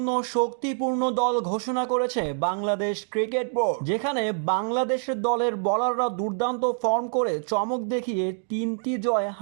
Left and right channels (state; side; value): silent; left; digital silence